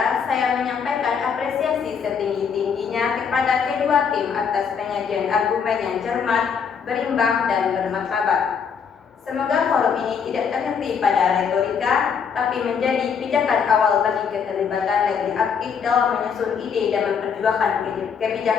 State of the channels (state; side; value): quieter; right; 6.6 dB